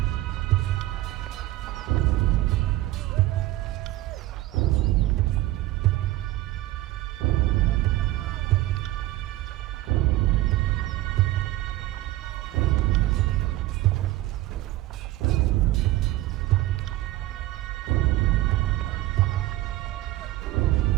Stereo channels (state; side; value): quieter; left; 16.4 dB